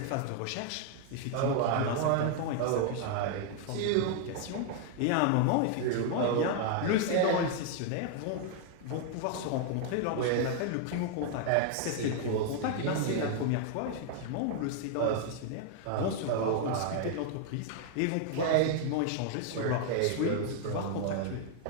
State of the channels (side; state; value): both; different; correlation 0.00